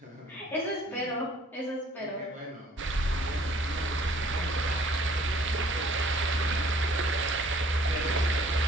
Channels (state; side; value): normal; both; correlation 0.56